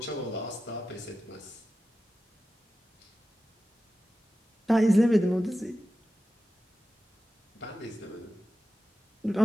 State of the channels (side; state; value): both; normal; correlation 0.93